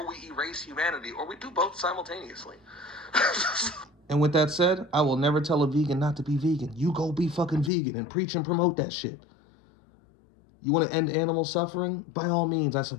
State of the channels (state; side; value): drops out; right; at 7.7 s